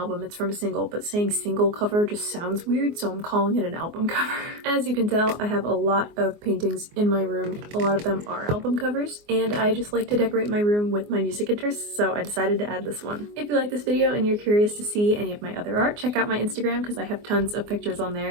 it's from a single, but saying single cover just sounds weird, so I'm calling it an album cover. As you can tell, I have a lot of paintings in my room. A lot of them are album covers, and I just like to decorate my room with my music interests, so I decided to add this one. If you like this video and you're curious to see any of my other art, check out my Instagram because I have tons of pictures on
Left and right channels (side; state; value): left; late; 24 ms